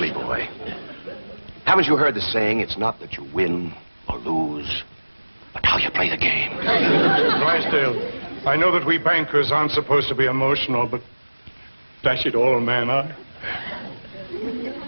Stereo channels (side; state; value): both; inverted; correlation -1.00